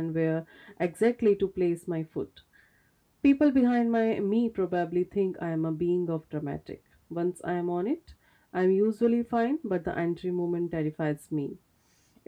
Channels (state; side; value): identical; both; correlation 1.00